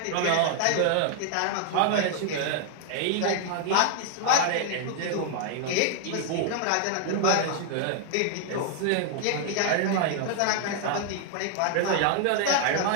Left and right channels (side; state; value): both; different; correlation 0.00